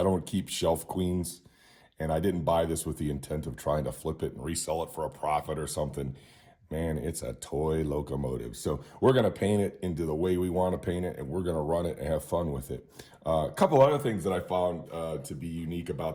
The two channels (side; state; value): both; identical; correlation 1.00